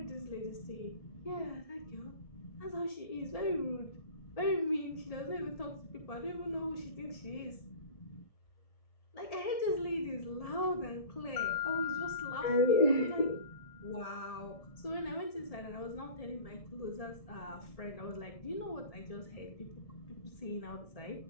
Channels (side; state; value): right; late; 1.7 ms